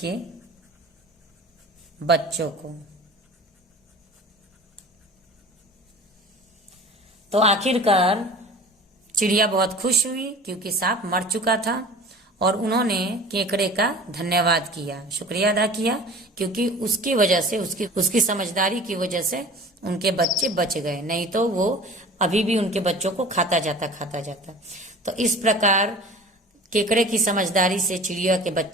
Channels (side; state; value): both; normal; correlation 0.41